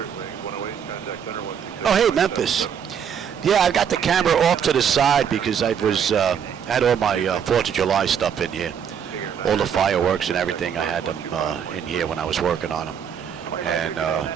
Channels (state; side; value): quieter; left; 8.0 dB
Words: Oh, hey, Memphis. Yeah, I got the camera off to the side because I was had all my 4th of July stuff in here. All the fireworks and everything, I had them in here when I was working on them. And I